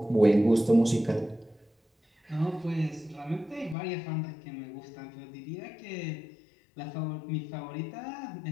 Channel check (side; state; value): right; drops out; at 3.8 s